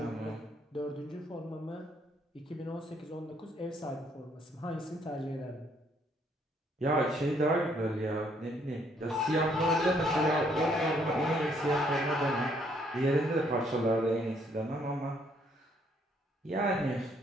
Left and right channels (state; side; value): normal; both; correlation 0.68